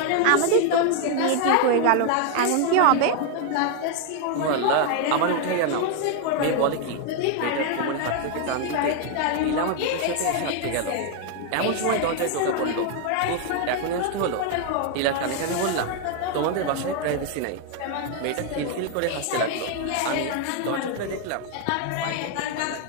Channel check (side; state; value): both; different; correlation 0.01